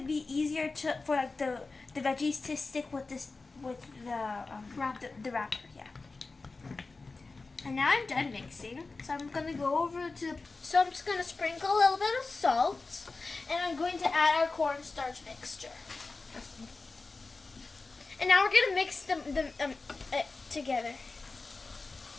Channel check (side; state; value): right; quieter; 3.8 dB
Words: be easier for like the veggies to stick with the wrapper, yeah. And now I'm done mixing, so I'm gonna go over to. So I'm just gonna sprinkle a little bit of salt, and I'm going to add our cornstarch mixture. And now we're gonna mix them together.